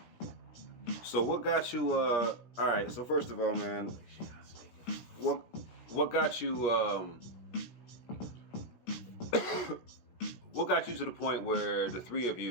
So what got you? All right. So first of all, man, what got you? What got you to the point where the three of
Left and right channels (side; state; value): right; late; 17 ms